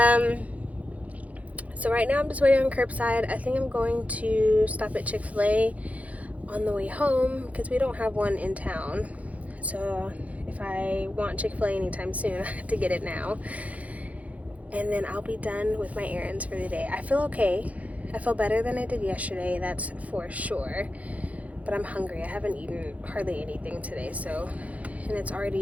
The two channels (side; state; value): left; late; 0.069 ms